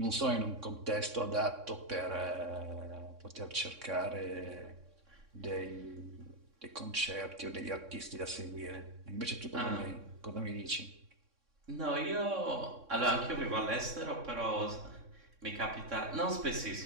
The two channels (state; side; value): late; left; 3.6 ms